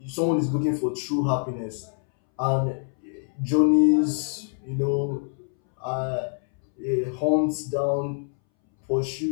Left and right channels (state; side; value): silent; right; 61 dB below the other